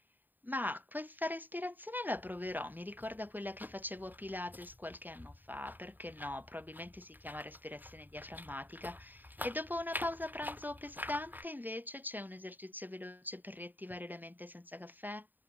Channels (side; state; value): left; late; 0.090 ms